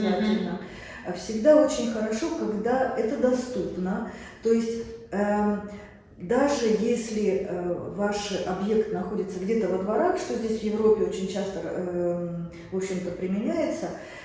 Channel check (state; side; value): identical; both; correlation 1.00